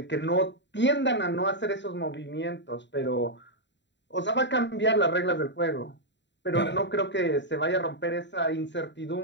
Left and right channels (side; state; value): right; late; 0.52 ms